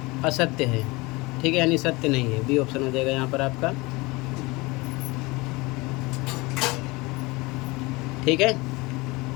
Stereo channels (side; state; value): right; quieter; 23.8 dB